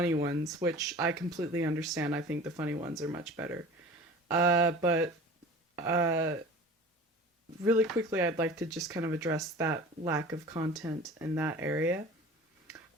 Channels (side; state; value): both; normal; correlation 0.40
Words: ones, which I completely understand. I think the funny ones are much better. But uh, really quickly, I'd like to just kind of address that lack of content in that area.